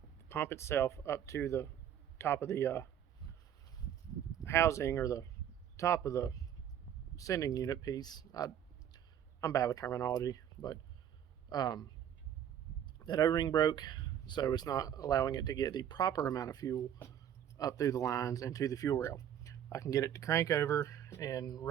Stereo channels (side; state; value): left; quieter; 9.9 dB